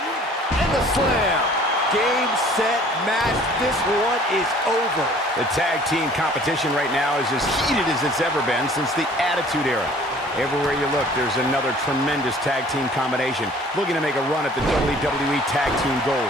And the slam. Game, set, match. This one is over. The tag team competition right now is as heated as it's ever been since the Attitude Era. Everywhere you look, there's another tremendous tag team combination looking to make a run at the WWE Tag Team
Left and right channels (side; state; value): both; normal; correlation 0.52